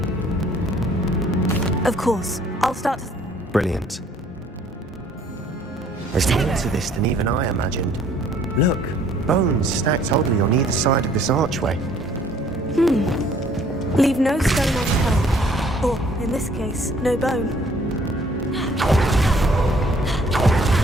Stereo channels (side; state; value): both; normal; correlation 0.59